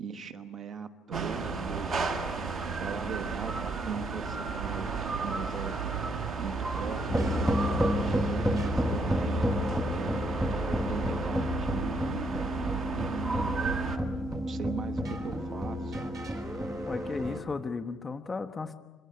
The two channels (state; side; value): normal; both; correlation 0.73